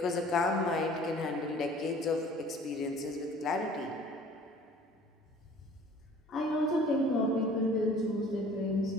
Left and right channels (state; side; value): normal; both; correlation 0.50